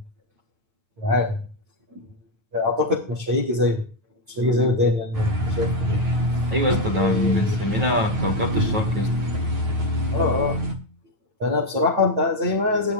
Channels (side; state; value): left; late; 9.4 ms